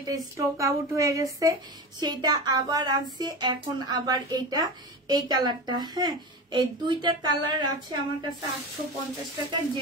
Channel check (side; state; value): both; normal; correlation 0.26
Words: স্টক আউট হয়ে গেছে সেটা আবার আনছি, এখন আবার এইটা এই কালারটা। হ্যাঁ, এই দুইটা কালার আছে আমার কাছে 850 টাকা।